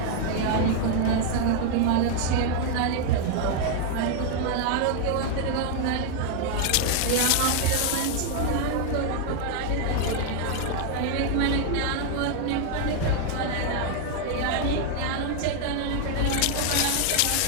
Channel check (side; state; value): both; different; correlation 0.00